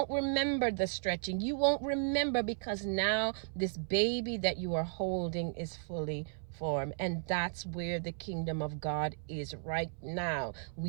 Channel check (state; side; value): silent; left; 55 dB below the other